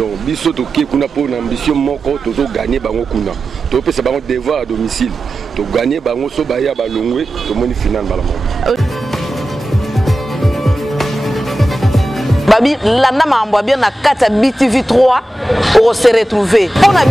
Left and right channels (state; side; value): normal; both; correlation 0.93